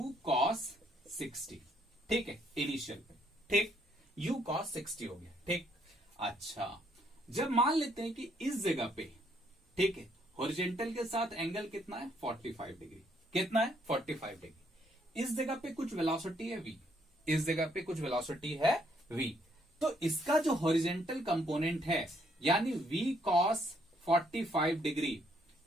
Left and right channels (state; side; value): normal; both; correlation 0.70